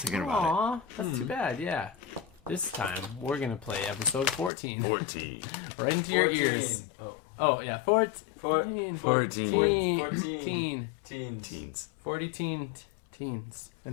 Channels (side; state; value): right; drops out; at 4.5 s